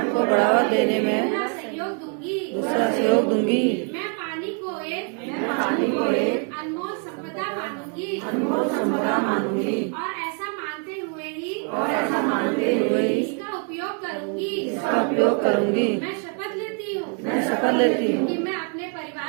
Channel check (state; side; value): quieter; left; 38.9 dB